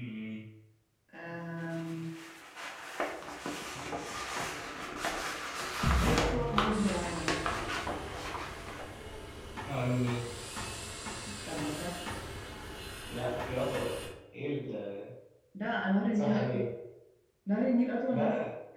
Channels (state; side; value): identical; both; correlation 1.00